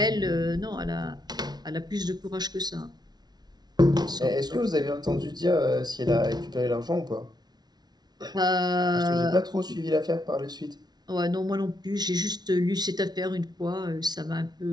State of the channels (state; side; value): late; left; 0.19 ms